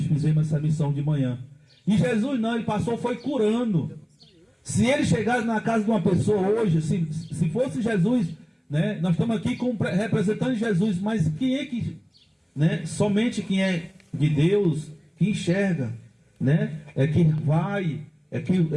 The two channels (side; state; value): both; identical; correlation 1.00